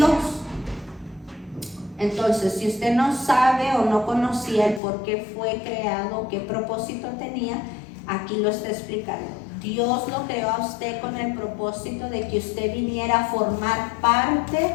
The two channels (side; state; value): right; drops out; at 4.8 s